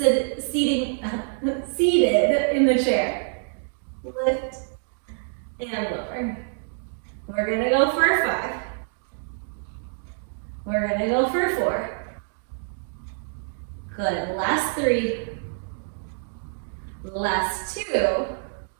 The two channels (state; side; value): silent; left; digital silence